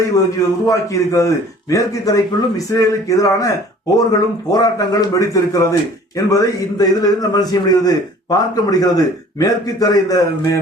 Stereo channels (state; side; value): normal; both; correlation 0.50